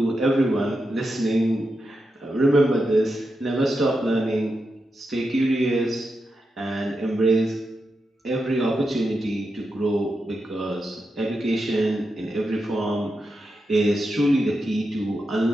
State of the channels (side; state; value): both; normal; correlation 0.87